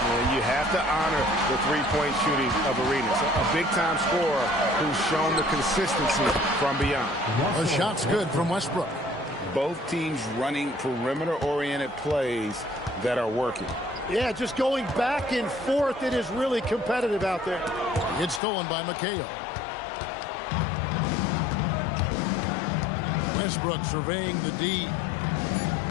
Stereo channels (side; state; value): right; drops out; at 18.4 s